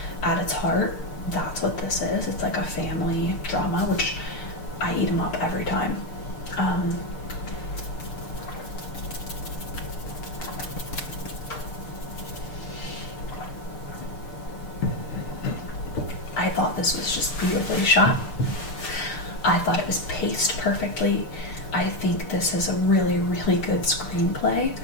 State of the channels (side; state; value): right; late; 6.7 ms